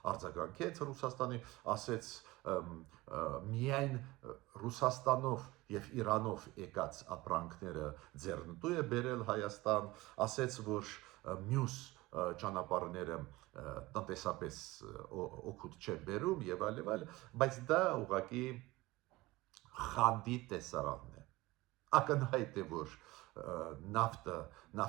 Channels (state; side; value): quieter; left; 20.0 dB